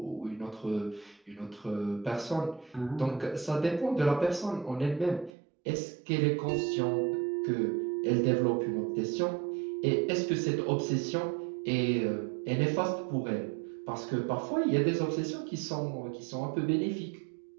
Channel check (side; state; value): left; drops out; at 5.3 s